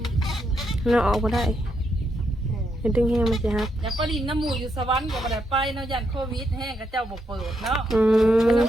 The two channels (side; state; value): both; normal; correlation 0.79